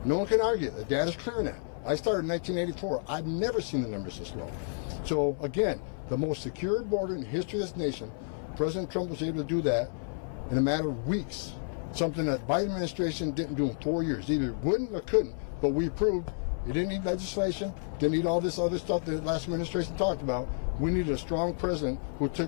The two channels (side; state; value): right; silent; 55 dB below the other